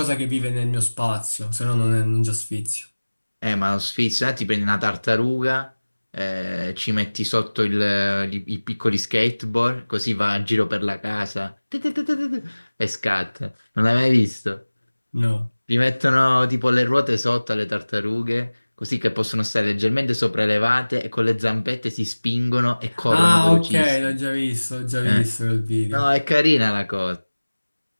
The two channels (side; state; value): both; inverted; correlation -1.00